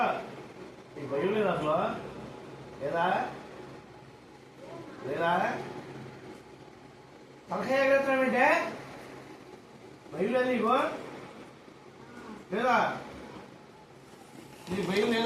ఈ భయం లేదు అసలు లేదా లేదా తలకాయ ఎగరేస్తామంటే భయం లేదు నీకు లేదా నీకు భయం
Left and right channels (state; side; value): identical; both; correlation 1.00